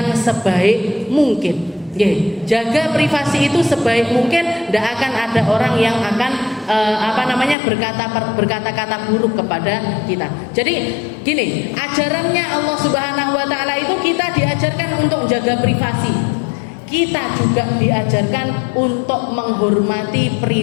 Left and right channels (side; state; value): right; drops out; at 7.6 s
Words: sebaik mungkin. Jaga privasi itu sebaik mungkin. Ndak akan ada orang yang akan berkata-kata buruk kepada kita. Jadi gini, ajarannya Allah Subhanahu wa taala itu kita diajarkan untuk jaga privasi. Kita juga diajarkan untuk menghormati